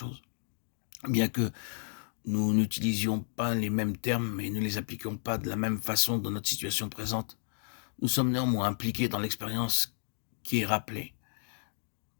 Bien que nous n'utilisions pas les mêmes termes et ne les appliquions pas de la même façon dans notre situation présente, nous sommes néanmoins impliqués dans l'expérience qui est rappelée.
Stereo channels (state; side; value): silent; right; digital silence